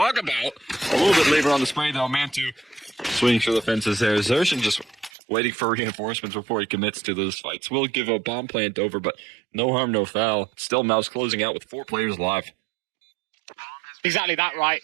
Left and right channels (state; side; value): drops out; left; at 5.1 s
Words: about. A little bit later on the spray, though. Mantu swinging through the fences there. Zershin just waiting for reinforcements before he commits to those fights. Will give a bomb plant over, but no harm, no foul. Still MOUZ closing out with 4 players alive. Exactly that, right?